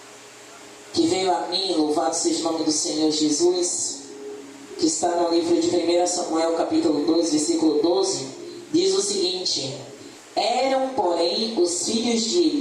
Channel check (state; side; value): identical; both; correlation 1.00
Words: que veio a mim, louvado seja o nome do Senhor Jesus, que está no livro de 1 Samuel, capítulo 2, versículo 12, diz o seguinte: eram, porém, os filhos de